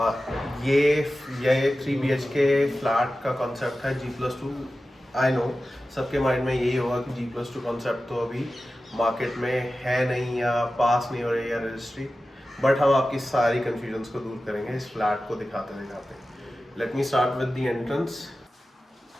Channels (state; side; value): normal; both; correlation 0.94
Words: ये 3 BHK फ्लैट का कॉन्सेप्ट है G+2। आई नो सबके माइंड में यही होगा कि G+2 कॉन्सेप्ट तो अभी मार्केट में है नहीं या पास नहीं हो रही है रजिस्ट्री, बट हम आपकी सारी कन्फ्यूजन्स को दूर करेंगे इस फ्लैट को दिखाते दिखाते। Let me start with the entrance.